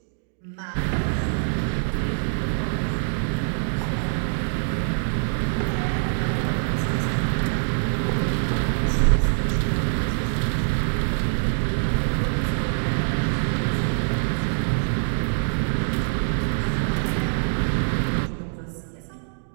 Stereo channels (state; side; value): silent; left; digital silence